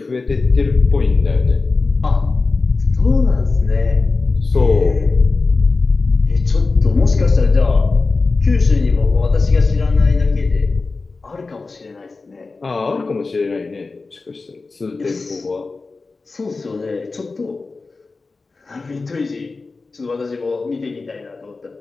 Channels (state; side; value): quieter; right; 3.9 dB